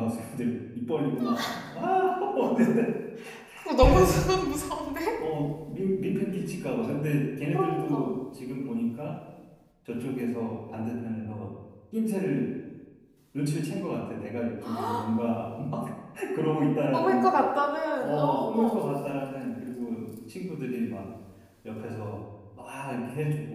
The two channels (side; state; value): both; identical; correlation 1.00